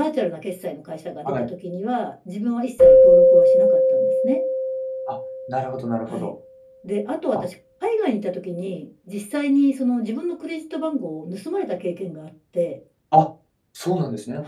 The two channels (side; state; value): both; identical; correlation 1.00